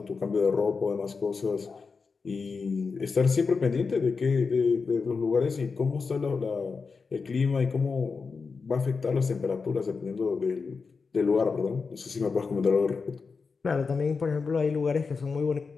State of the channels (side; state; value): right; quieter; 4.8 dB